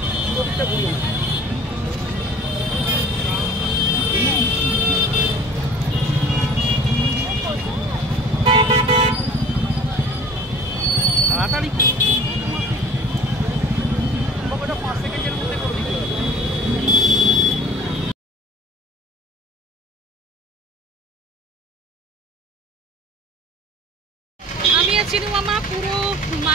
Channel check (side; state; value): both; normal; correlation 0.47